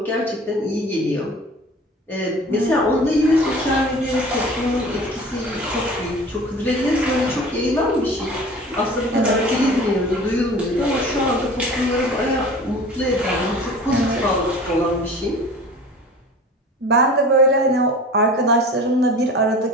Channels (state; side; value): normal; both; correlation 0.41